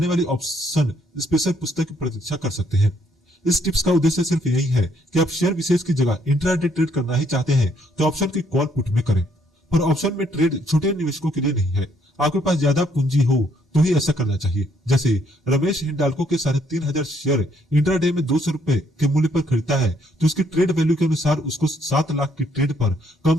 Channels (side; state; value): both; normal; correlation 0.69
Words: वाली ऑप्शन स्पेशल पुस्तक की प्रतीक्षा कर सकते हैं। इस टिप्स का उद्देश्य सिर्फ यही है कि आप शेयर विशेष की जगह इंट्राडे ट्रेड करना ही चाहते हैं तो ऑप्शन की कॉल पुट में करें, पर ऑप्शन में ट्रेड छोटे निवेशकों के लिए नहीं है। आपके पास ज्यादा पूंजी हो तो ही ऐसा करना चाहिए। जैसे रमेश हिंडाल्को के 3,500 शेयर इंट्राडे में 200 रुपए के मूल्य पर खरीदता है तो उसकी ट्रेड वैल्यू के अनुसार उसको 7 लाख की ट्रेड पर कम